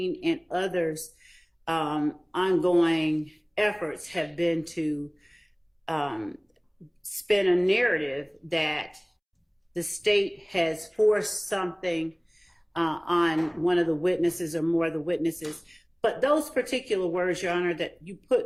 and others' ongoing efforts have been to spin a narrative that the state has forced something on one of the witnesses or more of the witnesses. But those particular words, Your Honor, that you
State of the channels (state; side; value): identical; both; correlation 1.00